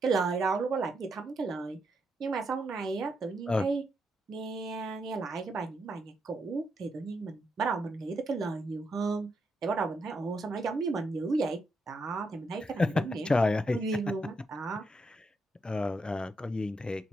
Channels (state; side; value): normal; both; correlation 0.80